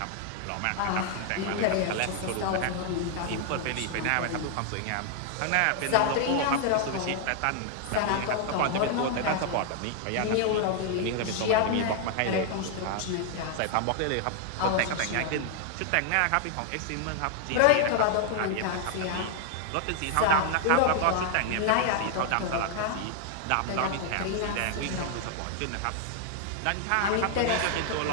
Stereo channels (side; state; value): both; different; correlation 0.00